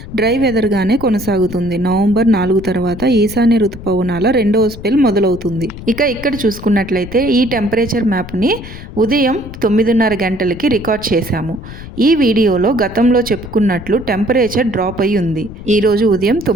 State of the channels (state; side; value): noise; left; rumble, 13 dB below the sound